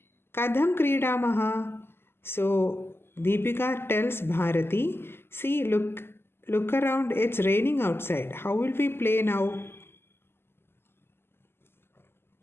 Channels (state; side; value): late; right; 0.11 ms